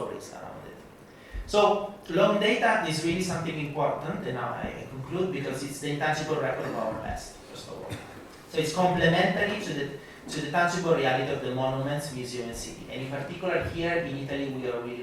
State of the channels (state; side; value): identical; both; correlation 1.00